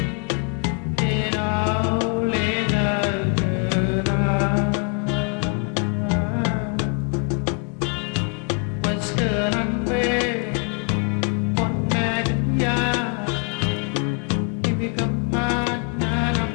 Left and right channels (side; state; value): right; quieter; 39.2 dB